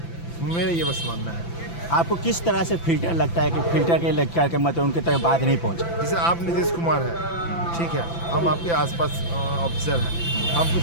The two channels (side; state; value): right; late; 5.9 ms